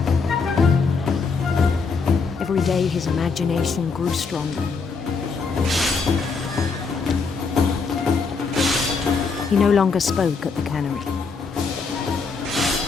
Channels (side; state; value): right; quieter; 4.8 dB